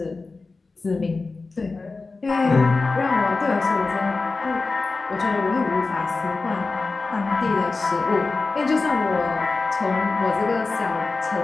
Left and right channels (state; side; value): quieter; right; 3.8 dB